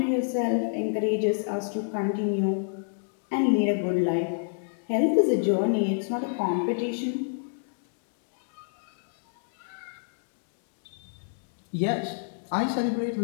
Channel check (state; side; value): silent; right; digital silence